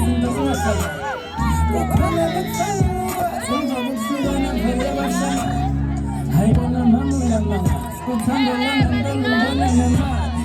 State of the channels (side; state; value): both; identical; correlation 1.00